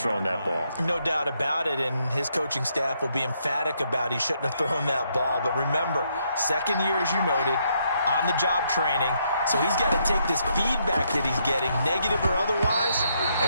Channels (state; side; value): inverted; both; correlation -0.75